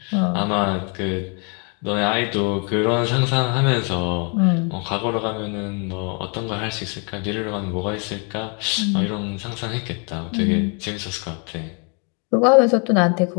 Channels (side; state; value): right; quieter; 36.5 dB